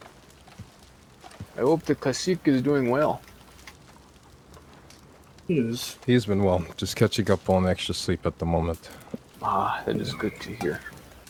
I hope the cacique is doing well. He is. He's been well, just catching up on extra sleep at the moment. Ah, that is good to hear.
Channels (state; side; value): identical; both; correlation 1.00